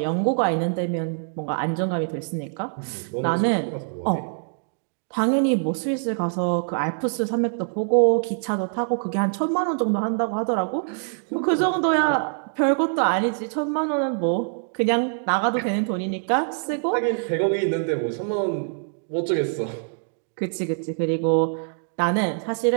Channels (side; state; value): left; silent; digital silence